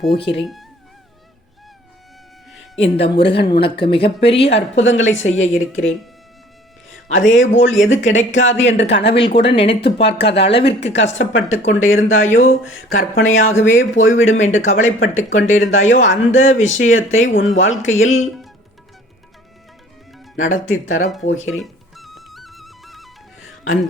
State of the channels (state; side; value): normal; both; correlation 0.52